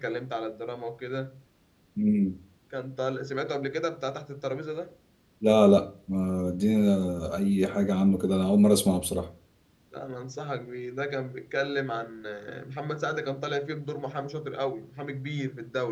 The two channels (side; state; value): both; identical; correlation 1.00